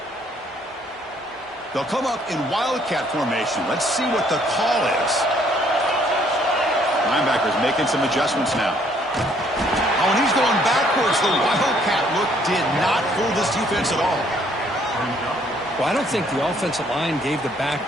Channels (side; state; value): both; normal; correlation 0.65